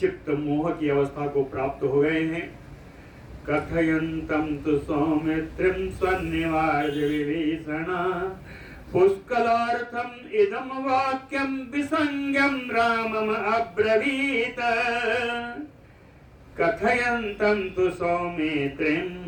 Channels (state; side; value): identical; both; correlation 1.00